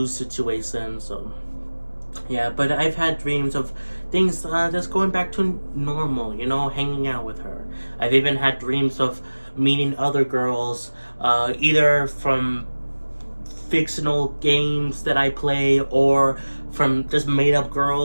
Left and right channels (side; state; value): both; inverted; correlation -1.00